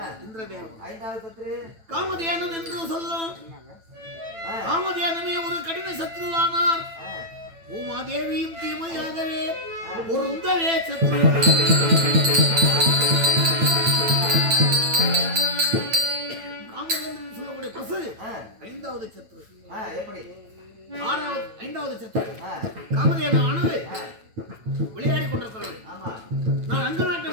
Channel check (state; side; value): late; left; 9.0 ms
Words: இந்திரதேவன். ஐந்தாவது சத்ரு காமதேனு என்று சொல்லும். காமதேனுமே ஒரு கடின சத்ருவானார். பூமாதேவியும் தீமையாகவே பொருந்தவே சத்ரு. காமதேனு சொல்லக்கூடிய பசு ஐந்தாவது சத்ரு. எப்படி ஐந்தாவது சத்ரு காமதேவனானது விளையாடி கொண்டிருக்கிறது. நான் அங்க நாட்டை